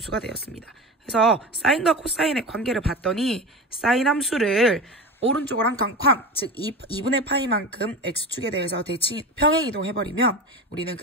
되었습니다. 그래서 사인과 코사인의 관계를 봤더니 사인 함수를 오른쪽으로 한 칸, 즉 2분의 파이만큼 x축에 대해서 대칭 평행이동해버리면 우리는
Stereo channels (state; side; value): normal; both; correlation 0.27